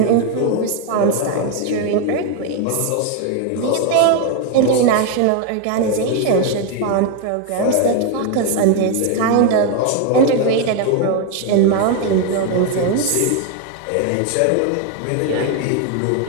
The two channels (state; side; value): different; both; correlation 0.01